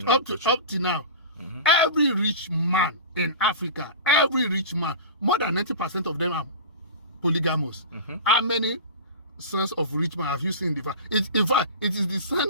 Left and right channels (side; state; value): both; inverted; correlation -0.33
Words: up to now. Every rich man in Africa, every rich man, more than 90% of them are polygamous. How many sons of rich men have you seen in the farm? In fact, it is the son